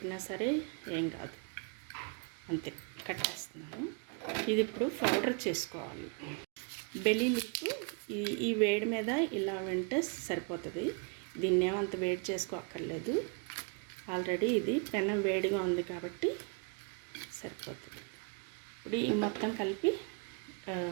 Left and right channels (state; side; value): quieter; left; 38.3 dB